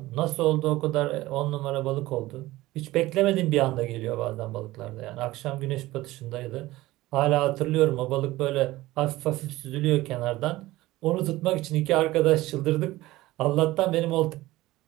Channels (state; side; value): quieter; left; 17.8 dB